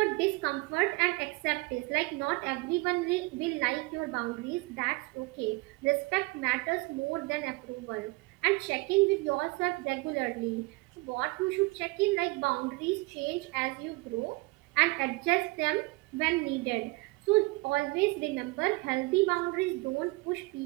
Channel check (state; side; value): quieter; left; 25.1 dB